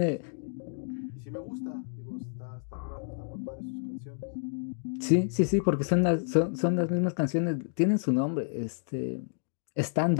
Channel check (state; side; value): silent; right; digital silence